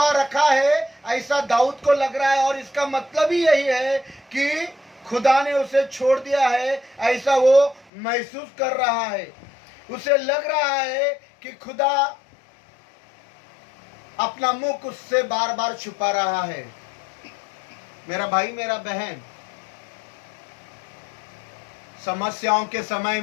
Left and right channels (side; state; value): right; drops out; at 7.9 s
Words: रखा है ऐसा दाऊद को लग रहा है, और इसका मतलब ही यही है कि खुदा ने उसे छोड़ दिया है ऐसा वो महसूस कर रहा है। उसे लग रहा है कि खुदा अपना मुख उससे बार बार छुपा रहा है। मेरा भाई मेरा बहन, समस्याओं के समय